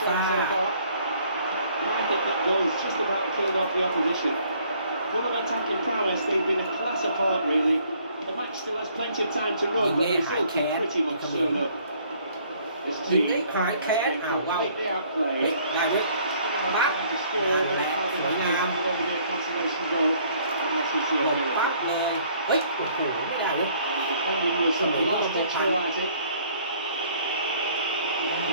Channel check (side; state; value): both; inverted; correlation -0.61